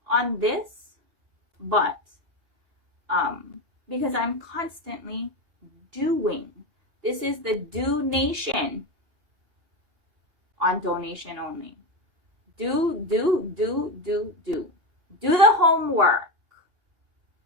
on this, but because I'm constantly doing. This is the Do Nation on donation only. Do the homework.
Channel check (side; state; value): left; late; 2.8 ms